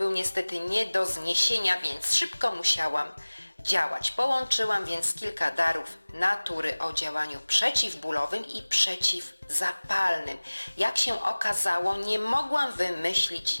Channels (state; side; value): inverted; both; correlation -1.00